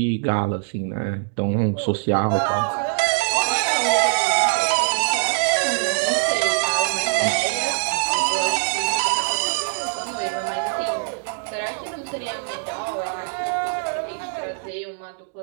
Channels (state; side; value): silent; left; digital silence